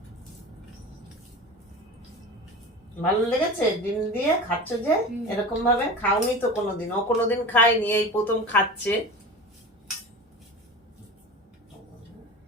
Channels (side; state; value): both; normal; correlation 0.32